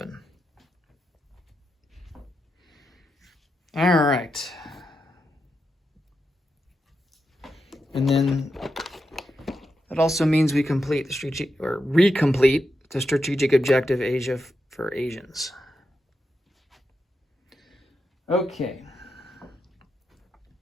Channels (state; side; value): normal; both; correlation 0.86